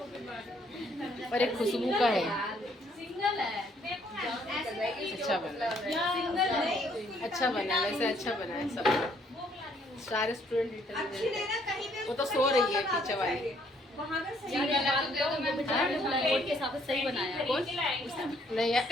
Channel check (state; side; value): normal; both; correlation 0.66